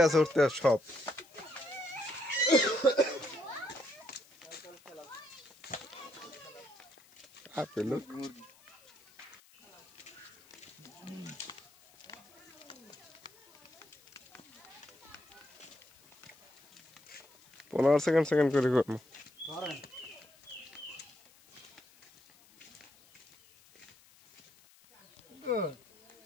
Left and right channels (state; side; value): noise; left; hiss, 27 dB below the sound